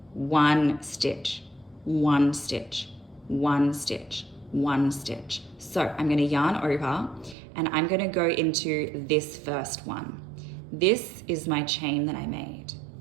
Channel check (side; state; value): left; drops out; at 7.4 s